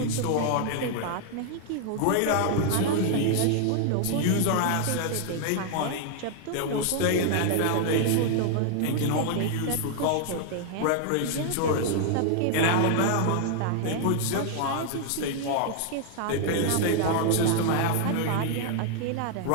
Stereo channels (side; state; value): both; different; correlation 0.00